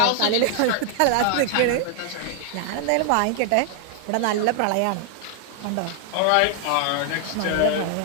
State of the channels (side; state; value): both; different; correlation 0.00